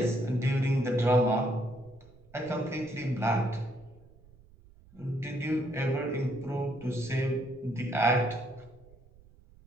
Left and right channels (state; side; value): noise; right; rumble, 25 dB below the sound